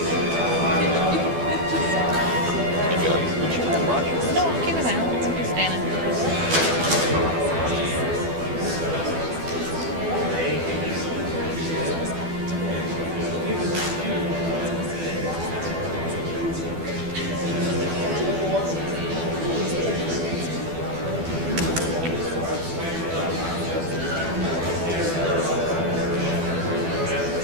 No, keep it out. I'm just standing.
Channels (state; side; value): late; left; 12 ms